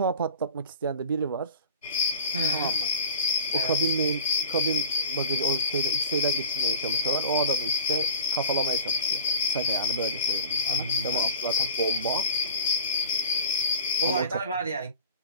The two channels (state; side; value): inverted; both; correlation -0.37